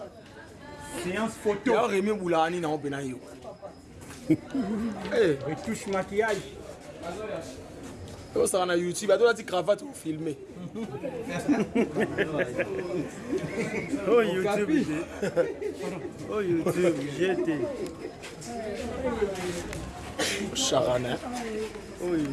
Séance photo. Ya Rémi Boulani na opena yo. Eh, retouche maquillage. ça va na YouTube, a la cravate pour filmer. Oh YouTube. Oh YouTube, j'étais. Charana. Oh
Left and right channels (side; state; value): both; identical; correlation 1.00